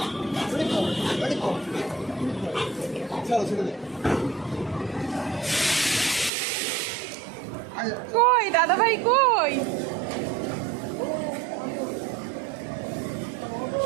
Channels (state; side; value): drops out; left; at 6.3 s